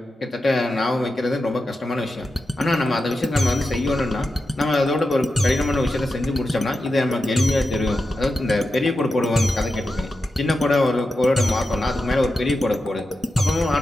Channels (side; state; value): both; normal; correlation 0.90